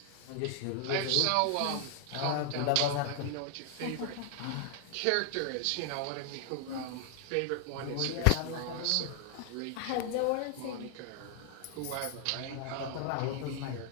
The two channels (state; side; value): different; both; correlation 0.00